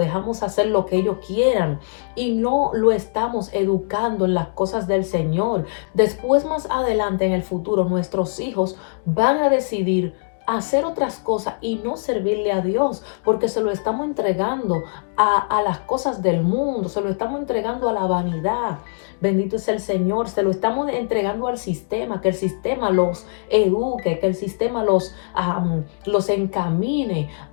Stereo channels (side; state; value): right; silent; digital silence